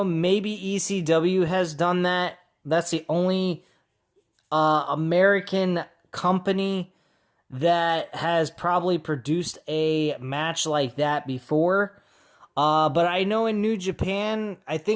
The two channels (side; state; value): both; identical; correlation 1.00